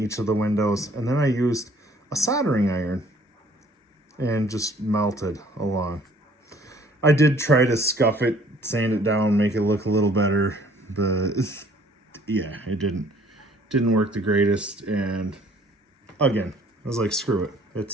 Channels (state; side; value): normal; both; correlation 0.58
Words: each of the windows. And then I used a soldering iron and just melted along. I did try to scuff it, sand it down, make it look a little better, but yeah, it didn't work the greatest. And again, I was like, screw it.